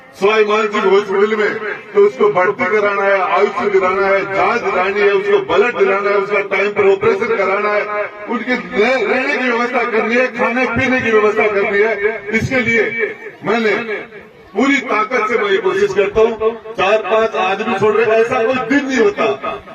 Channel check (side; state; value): both; identical; correlation 1.00